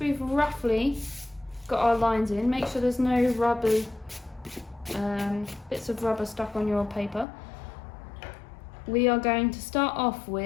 roughly got our lines in, make sure there's no rubber, bits of rubber stuck on your paper. We are going to start off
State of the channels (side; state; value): right; drops out; at 7.2 s